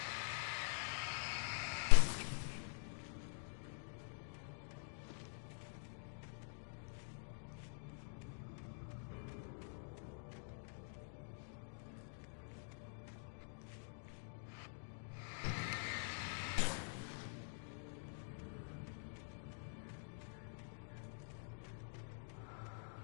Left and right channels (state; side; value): silent; right; digital silence